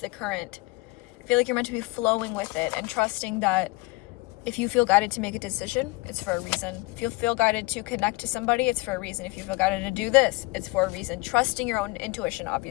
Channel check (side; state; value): right; quieter; 23.5 dB